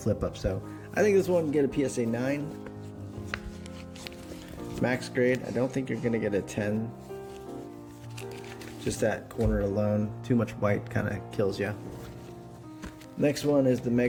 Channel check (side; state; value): both; identical; correlation 1.00